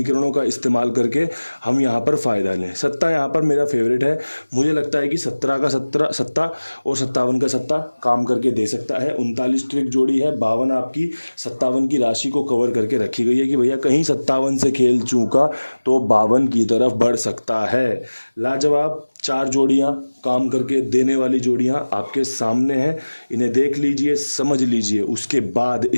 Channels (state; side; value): inverted; both; correlation -1.00